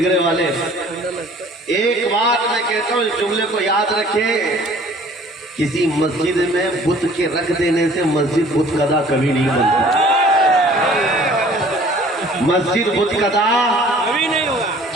والے ہیں۔ ایک بات میں کہتا ہوں، اس جملے کو یاد رکھیں، کسی مسجد میں بت کے رکھ دینے سے مسجد بت قدا کبھی نہیں بنتا۔ مسجد بت قدا کبھی نہیں ہوگا۔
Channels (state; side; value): normal; both; correlation 0.52